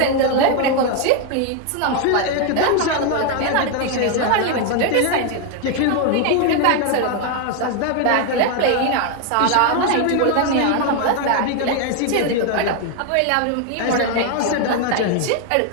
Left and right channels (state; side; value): different; both; correlation 0.01